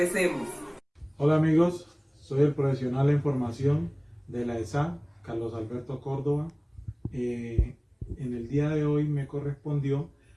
Hola amigos, soy el profesional en formación de la ESA, Carlos Alberto Córdoba. En el día de hoy me correspondió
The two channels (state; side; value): identical; both; correlation 1.00